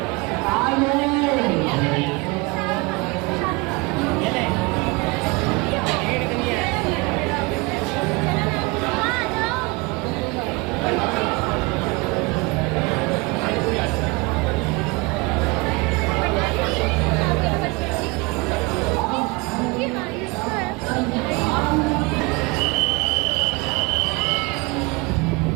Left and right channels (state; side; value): quieter; left; 26.5 dB